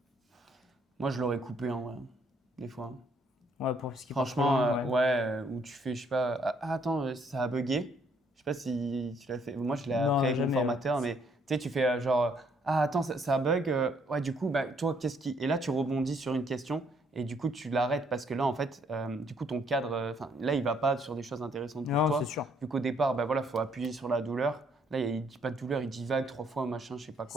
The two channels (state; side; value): normal; both; correlation 0.68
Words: Moi, je l'aurais coupé en vrai, des fois. Ouais, pour ce qui part trop Franchement, loin, ouais. où tu fais, je sais pas, attends, ça a bugué. Je sais pas si tu l'as fait. Moi, je l'ai appris Non, avec mon jamais, formateur, ouais. mais tu sais, tu fais genre, attends, ça bug. Ouais, du coup, bah, toi, qu'est-ce qui. Et là, tu rebondis sur une question et du coup, tu l'arrêtes parce que là, en fait, du coup, ton cadre, enfin, là, il va pas sur des choses intéressantes pour Non, toi. c'est sûr. Vu qu'au départ, bah voilà, faut appuyer sur la douleur. Là, il dit pas de douleur, il divague 3 fois, machin, je sais pas